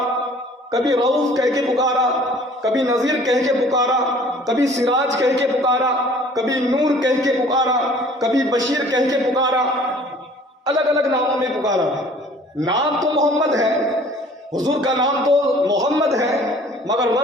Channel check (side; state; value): both; normal; correlation 0.51